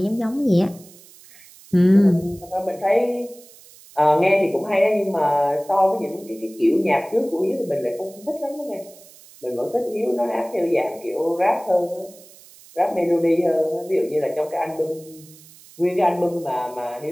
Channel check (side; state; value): right; noise; hiss, 23 dB below the sound